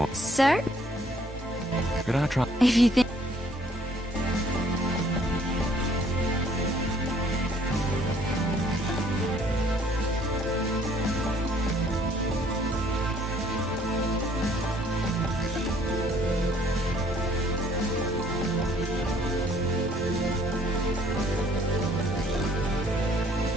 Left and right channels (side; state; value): both; normal; correlation 0.61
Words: Sir? Could I try? If you think...